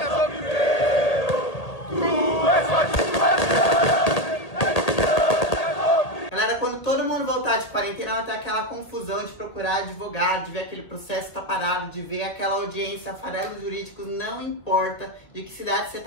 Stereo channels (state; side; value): late; right; 1.8 ms